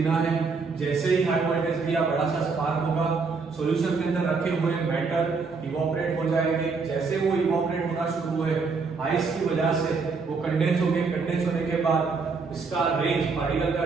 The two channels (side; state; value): left; quieter; 4.7 dB